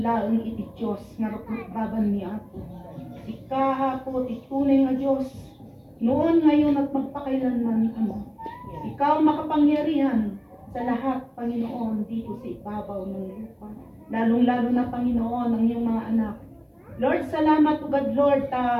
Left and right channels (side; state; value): both; identical; correlation 1.00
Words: iti Diyos, nga rupot baban mi ako. Si ka ako, titunay nga Diyos. Noon, ngayon at magpakailanman, Ama. Ikaw makapangyarihan sa lahat, Panginoon, dito sa ibabaw ng lupa. Lalong-lalo na, Panginoon, ang iyong mga anak. Lord, salamat o God, Lord,